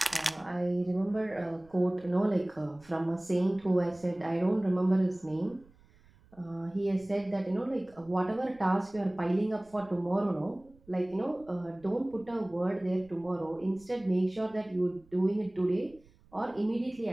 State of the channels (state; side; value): noise; right; rumble, 28 dB below the sound